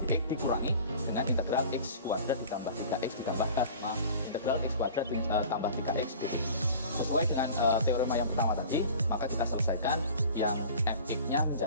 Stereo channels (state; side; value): inverted; both; correlation -0.42